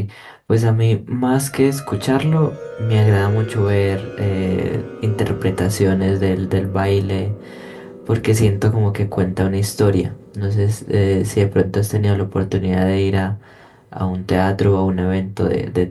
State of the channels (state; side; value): identical; both; correlation 1.00